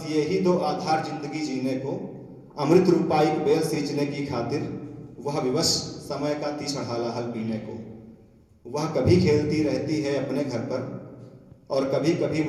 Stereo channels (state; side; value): identical; both; correlation 1.00